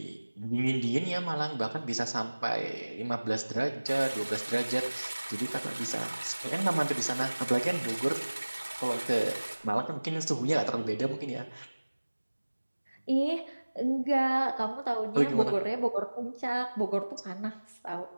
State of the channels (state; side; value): inverted; both; correlation -1.00